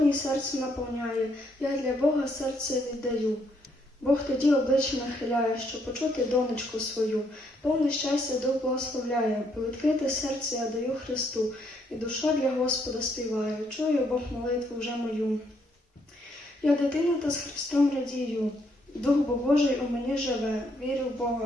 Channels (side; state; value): both; normal; correlation 0.72